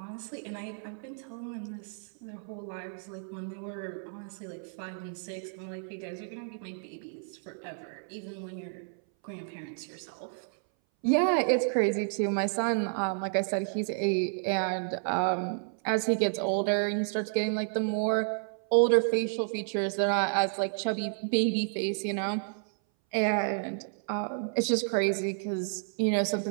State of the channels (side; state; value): left; silent; 57 dB below the other